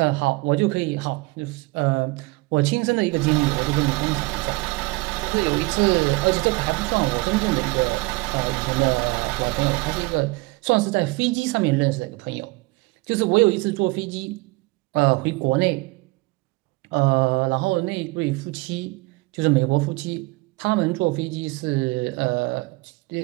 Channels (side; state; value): left; quieter; 24.1 dB